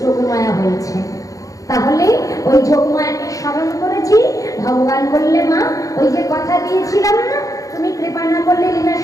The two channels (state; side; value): late; right; 0.16 ms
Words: যোগমায়া হয়েছে। তাহলে ওই যোগমায়াকে স্মরণ করেছি। ভগবান বললে মা ওই যে কথা দিয়েছিলাম না, তুমি কৃপা না করলে লীলা